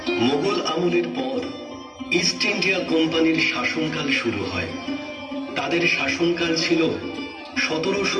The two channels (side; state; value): both; identical; correlation 1.00